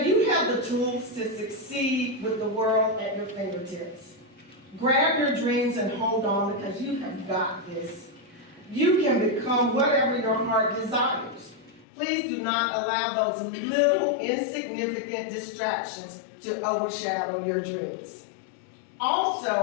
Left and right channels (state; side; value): drops out; right; at 11.9 s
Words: you have the tools to succeed with the world at your fingertips. Grab your dreams and hold on, because you have got this. You can become whatever your heart desires. Please do not allow those little insignificant distractions to overshadow your dreams.